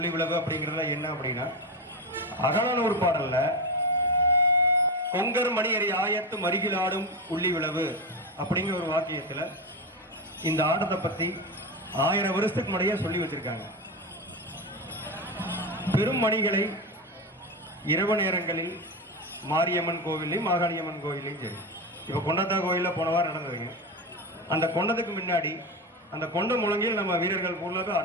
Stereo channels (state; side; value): normal; both; correlation 0.16